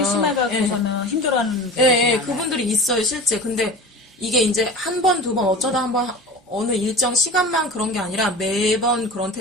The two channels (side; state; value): both; normal; correlation 0.35